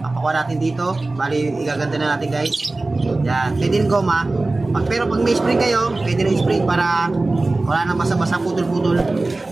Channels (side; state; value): left; quieter; 3.1 dB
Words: Papakuha natin dito. Bali, igaganda na natin guys. Yan, pwede rin goma. Pero pag may spring kayo, pwede rin spring para wala nang basa-basa, putol-putol.